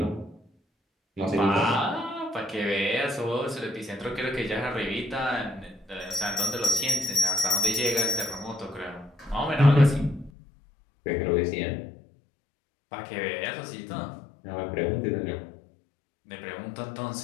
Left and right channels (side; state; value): right; drops out; at 10.3 s